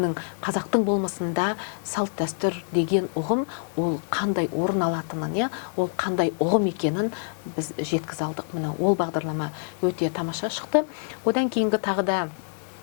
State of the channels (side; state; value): right; silent; 61 dB below the other